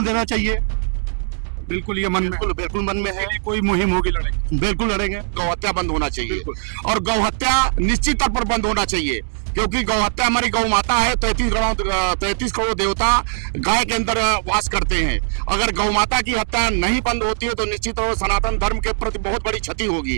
देना चाहिए। बिल्कुल ये मन में, बिल्कुल मन में है। कोई मुहिम होगी, लड़ेंगे, बिल्कुल लड़ेंगे। गौहत्या बंद होना चाहिए और गौहत्या निश्चित तौर पर बंद होना चाहिए, क्योंकि गौहत्या हमारी गौ माता है। 33 करोड़ देवता गाय के अंदर वास करते हैं। अगर गौ माता की हत्या नहीं बंद होती है तो निश्चित तौर पर सनातन धर्म के प्रति बहुत बड़ी क्षति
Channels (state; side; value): silent; left; 66 dB below the other